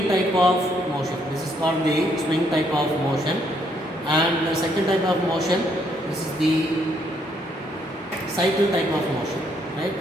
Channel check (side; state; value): both; normal; correlation 0.71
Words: type of motion. This is called the swing type of motion. And the second type of motion, this is the cycle type of motion, right?